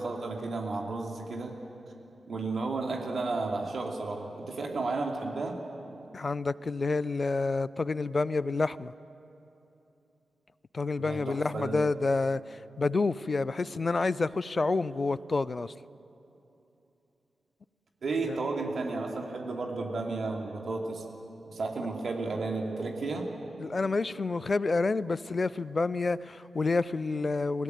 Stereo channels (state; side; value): normal; both; correlation 0.91